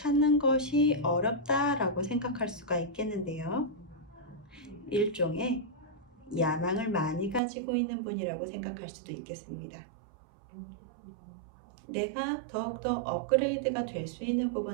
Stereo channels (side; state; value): left; drops out; at 7.4 s